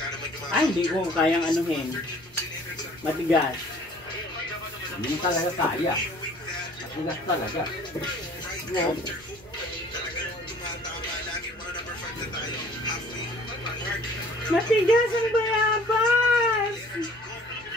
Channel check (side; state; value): right; noise; rumble, 27 dB below the sound